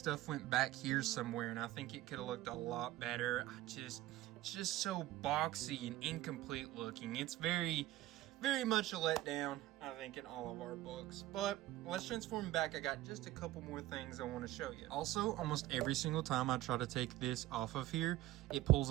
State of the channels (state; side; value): quieter; left; 15.8 dB